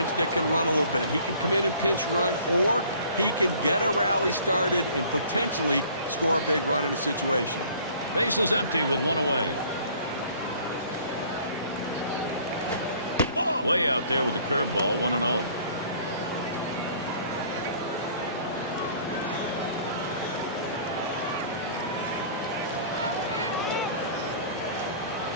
that can run a little bit. He can come in and pinch run, or he can get a rally started and potentially score a big run in a situation. Base is empty with 1 away. Way out there with the curveball. 1-0.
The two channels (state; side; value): inverted; both; correlation -0.52